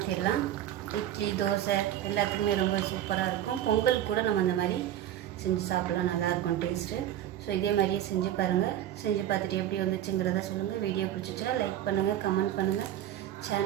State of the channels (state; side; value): quieter; left; 11.8 dB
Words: இட்லி, தோசை எல்லாத்துக்குமே ரொம்ப சூப்பராக இருக்கும். பொங்கல் கூட நம்ம இந்த மாதிரி செஞ்சு சாப்பிட்லாம், நல்லாயிருக்கும் டேஸ்ட்டு. ஸோ இதே மாதிரியே செஞ்சு பாருங்கள். செஞ்சு பார்த்துட்டு எப்படி வந்துச்சுங்கிறத சொல்லுங்கள். வீடியோ பிடிச்சிச்சுன்னா லைக் பண்ணுங்கள், கமெண்ட் பண்ணுங்கள்,